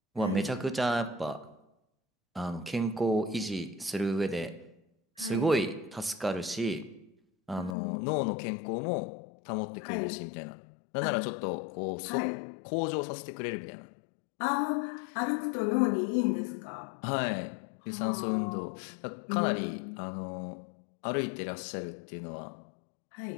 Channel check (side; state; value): right; drops out; at 7.8 s